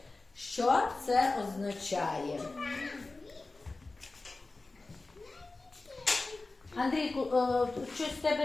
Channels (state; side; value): quieter; right; 3.4 dB